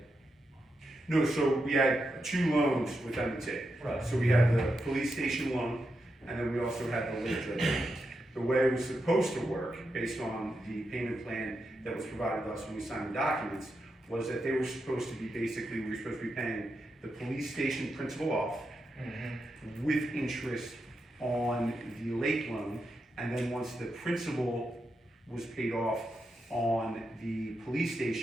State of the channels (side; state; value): both; normal; correlation 0.86